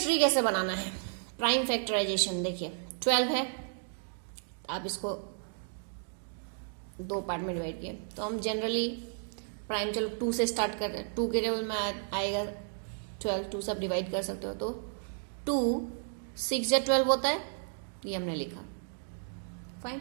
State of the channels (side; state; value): left; silent; digital silence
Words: कैसे बनाना है? प्राइम फैक्टराइजेशन देखिए, 12 है, आप इसको 2 पार्ट में डिवाइड किए तो हम जनरली प्राइम, चलो 2 से स्टार्ट कर रहे हैं। 2 के टेबल में आएगा 12, 2 से आप डिवाइड कर सकते हो। तो 2 6 या 12 होता है, ये हमने लिखा। फाइन।